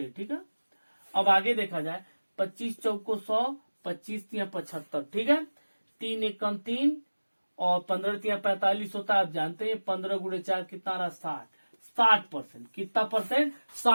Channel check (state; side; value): inverted; both; correlation -1.00